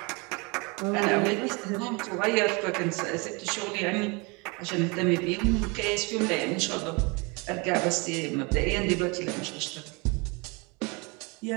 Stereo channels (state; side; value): quieter; left; 28.9 dB